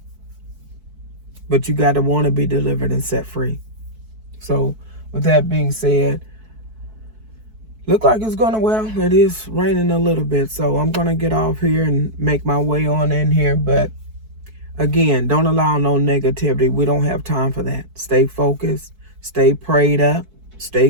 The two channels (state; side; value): late; left; 4.6 ms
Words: But you got to want to be delivered and set free. So with that being said, look like it's going to, well, it is raining a little bit. So I'm going to get off here and make my way on in here. But again, don't allow no negativity. We don't have time for that. Stay focused, stay prayed up,